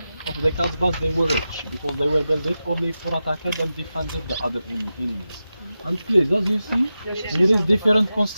of the Kasbahs, they were rich because they were built only for attacking and defended the other enemies. And please, as you see, there is different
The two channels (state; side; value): inverted; both; correlation -0.92